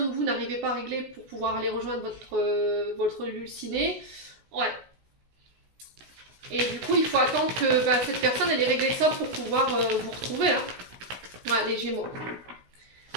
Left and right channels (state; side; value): late; left; 16 ms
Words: ou vous n'arrivez pas à régler pour pouvoir aller rejoindre votre dulciné. Ouais. Et du coup, il faut attendre que cette personne elle ait réglé ça pour pouvoir vous retrouver. Hein. Ouais, les Gémeaux.